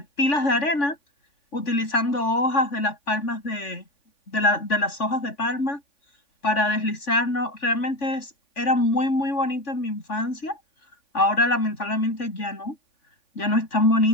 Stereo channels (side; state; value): right; late; 3.5 ms